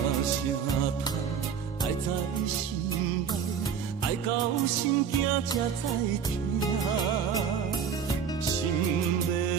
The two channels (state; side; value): quieter; left; 7.1 dB